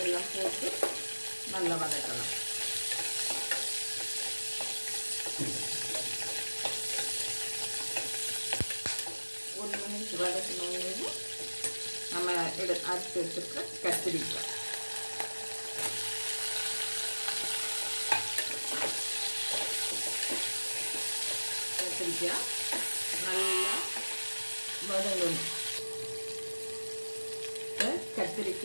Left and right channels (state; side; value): inverted; both; correlation -1.00